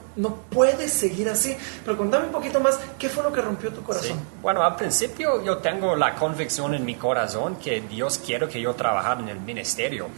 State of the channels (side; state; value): left; silent; digital silence